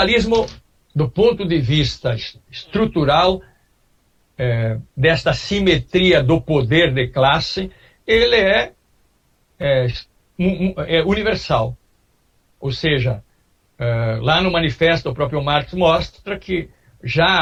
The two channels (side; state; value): both; identical; correlation 1.00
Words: do ponto de vista estrutural, desta simetria do poder de classe, ele é universal. Ou seja, lá no manifesto o próprio Marx mostra que